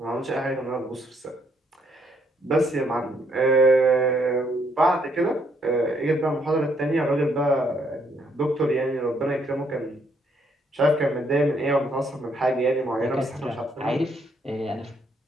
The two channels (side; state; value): both; normal; correlation 0.71